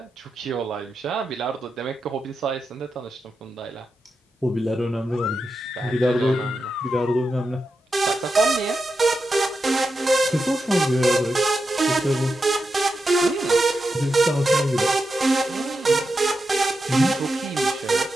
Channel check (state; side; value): normal; both; correlation 0.88